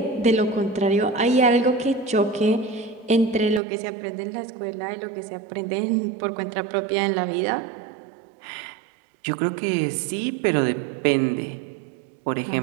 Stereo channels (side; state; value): left; drops out; at 3.6 s